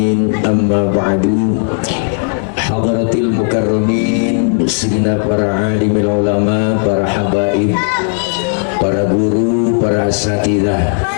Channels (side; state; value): right; silent; 58 dB below the other